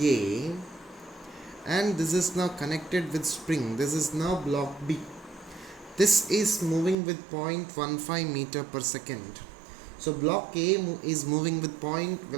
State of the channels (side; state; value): left; drops out; at 7.0 s